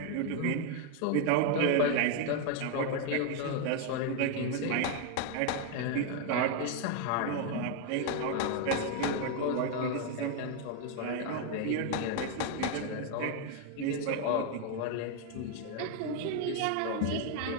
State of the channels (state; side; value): different; both; correlation 0.01